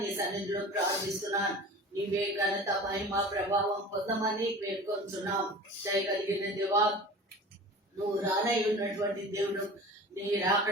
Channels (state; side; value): normal; both; correlation 0.38